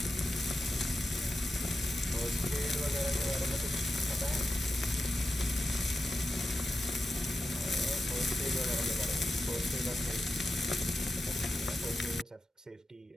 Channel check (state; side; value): normal; both; correlation 0.90